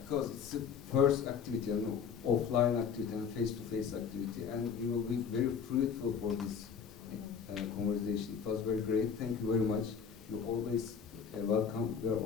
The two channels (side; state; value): right; quieter; 6.7 dB